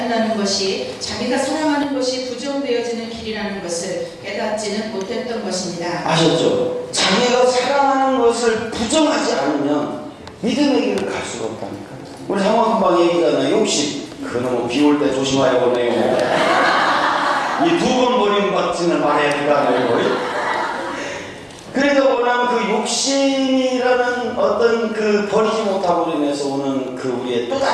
것이 자기가 사랑하는 것이 부정되어지는 길이라는 것을 깨닫지는 못했던 것입니다. 아셨죠? 자기가 사랑하는 것을 부정하지 않으면 믿음의 길을 갈 수가 없다니까. 우리 상황금방 얘기잖아요. 욕심. 그놈은 비 올 때 조심하여 보내요. 이 2번 버림받지는 말해야 된다는 그래도 뭐냐면 그 욕심이라는 어떤 그 버리지 못함으로 인해서 오는 그 우리의 또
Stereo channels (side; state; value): both; identical; correlation 1.00